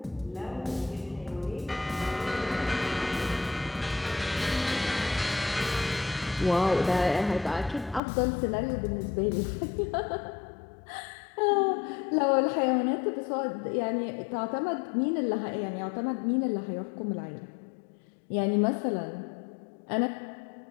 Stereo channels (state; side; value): drops out; right; at 8.0 s